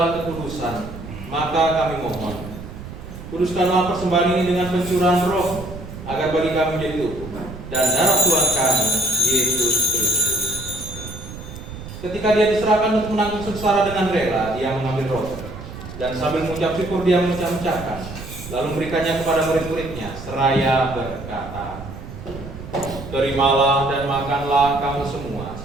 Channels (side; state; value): right; noise; rumble, 12 dB below the sound